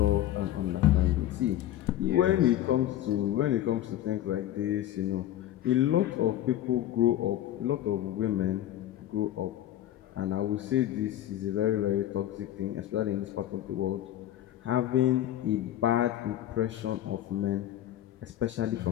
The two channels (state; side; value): quieter; right; 12.7 dB